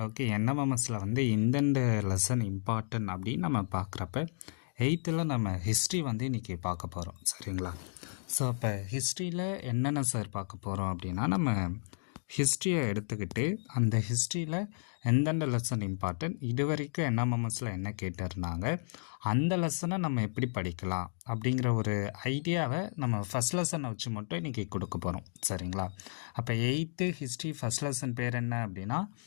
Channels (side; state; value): right; silent; digital silence